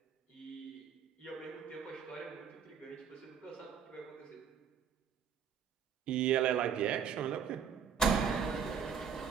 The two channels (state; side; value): quieter; left; 7.1 dB